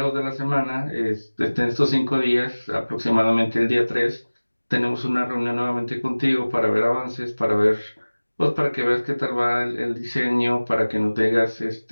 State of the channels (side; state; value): both; inverted; correlation -1.00